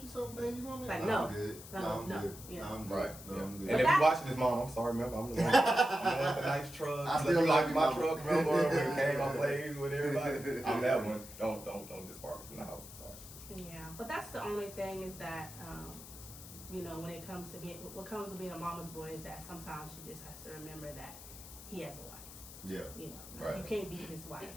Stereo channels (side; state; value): left; noise; hiss, 15 dB below the sound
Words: you something, baby? You want me? Like, I'm no. good. No, I'm no. good. Yeah. No, I'm good. Right. No, Yeah. I'm And good. if that- you watching this, mom, I'm sorry, remember, I'm the one with the nice truck. I Look still like love my you, truck, mama. remember when it came on plays with everybody. I'm that one. Don't disbark me from the house. I'm sorry. Yeah, but that's the only thing is that you know, when it comes to being a mama's boy is that sometimes she just has to remember that he has a wife. Yeah. You know, Right. you can't beat his wife.